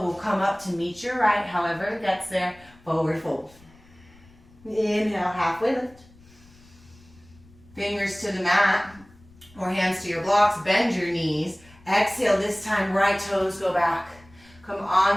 will come up to meet your right. However it gets there, forward fold. Inhale, halfway lift. Fingers to the mat or hands to your blocks. Bend your knees. Exhale, this time right toes go back. Come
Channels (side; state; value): left; noise; rumble, 26 dB below the sound